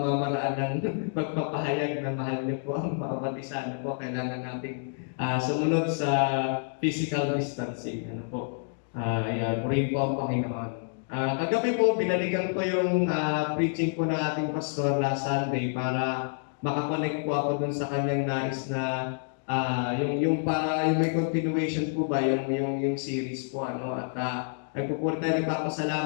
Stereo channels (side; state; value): right; silent; digital silence